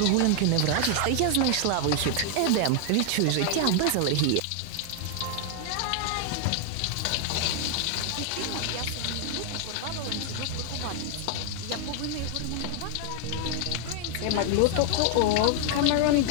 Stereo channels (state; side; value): different; both; correlation 0.00